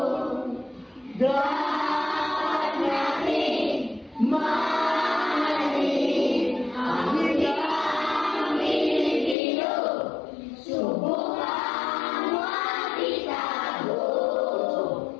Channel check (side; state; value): right; drops out; at 9.3 s